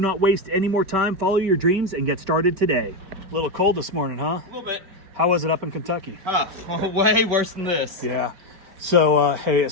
waste any more time. Follow your dreams and get started today. A little cold this morning, huh? A little bit. How was it up in Kentucky? Way worse than this. Yeah. So, hey,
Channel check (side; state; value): left; late; 5.3 ms